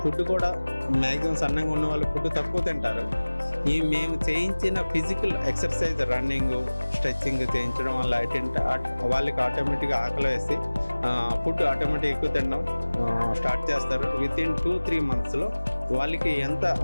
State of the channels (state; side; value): inverted; both; correlation -1.00